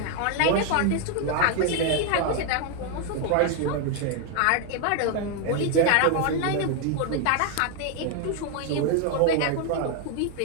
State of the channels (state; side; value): different; both; correlation 0.00